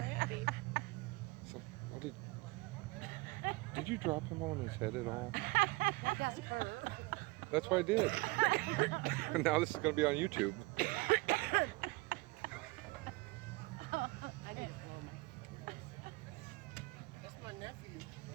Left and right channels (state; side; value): quieter; left; 23.1 dB